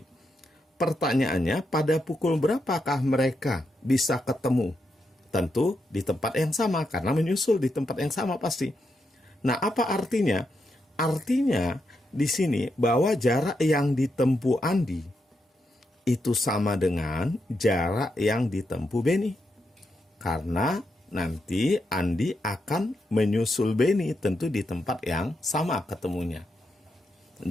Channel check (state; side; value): normal; both; correlation 0.83